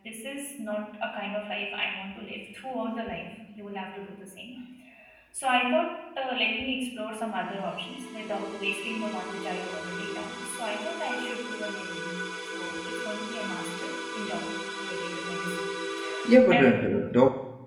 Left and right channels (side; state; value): both; identical; correlation 1.00